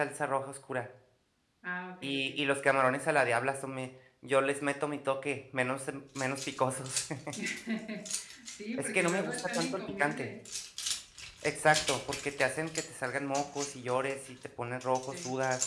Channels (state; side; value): identical; both; correlation 1.00